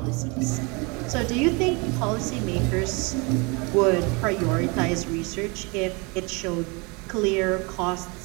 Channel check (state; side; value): quieter; left; 29.3 dB